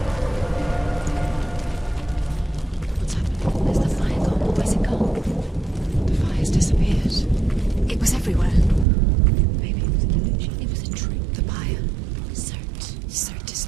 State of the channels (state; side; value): drops out; left; at 8.8 s